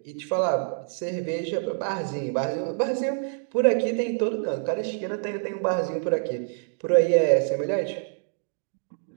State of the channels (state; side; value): silent; left; 61 dB below the other